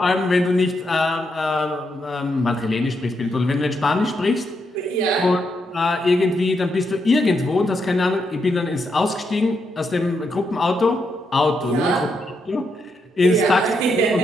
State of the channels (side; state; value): both; normal; correlation 0.80